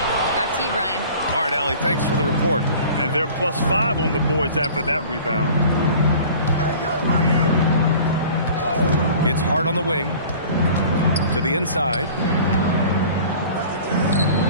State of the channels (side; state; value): both; inverted; correlation -0.45